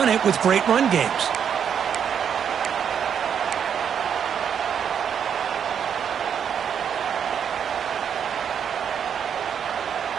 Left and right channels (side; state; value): left; quieter; 8.0 dB